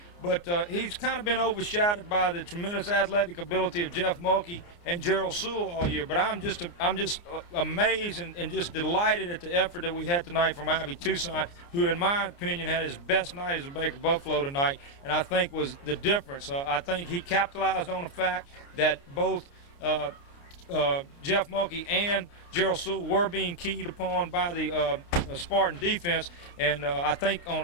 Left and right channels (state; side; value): late; right; 29 ms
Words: but he's kind of been overshadowed by the tremendous athletic ability of Jeff Mulkey and Jerald Sowell all year. But I'm just amazed and just delighted at the effort that we had tonight from Ivy Toussaint, who, in my opinion, had his best night as a Baker Buffalo tonight, and I think was the difference. I think he capitalized on the fact that both Jeff Mulkey and Jerald Sowell were being keyed upon by the Spartan defense, and I think on